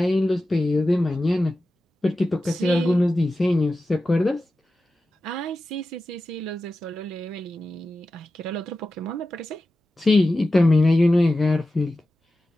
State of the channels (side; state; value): both; normal; correlation 0.93